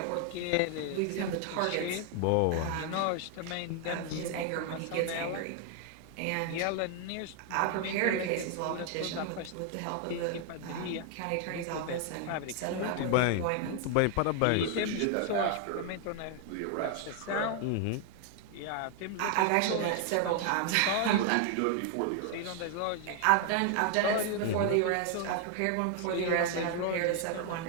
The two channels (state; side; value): different; both; correlation 0.00